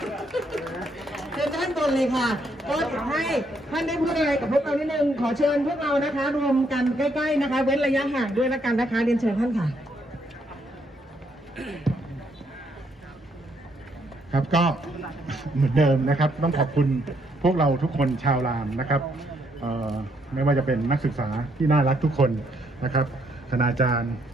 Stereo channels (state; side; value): normal; both; correlation 0.73